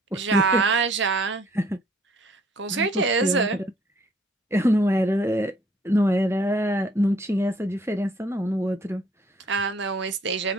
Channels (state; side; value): normal; both; correlation 0.61